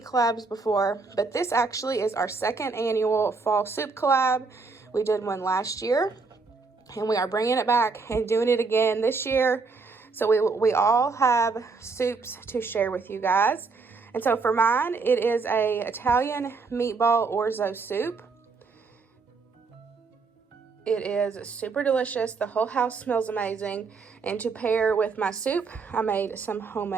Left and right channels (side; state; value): left; quieter; 4.4 dB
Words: before, but this actually is our second annual fall soup collab. We did one last year, and we are bringing it back and doing it again this year. So we all have soups to share with you guys. And so for mine, it is a Italian meatball orzo soup. It is super delicious. The whole house smells amazing. And to pair with my soup, I made some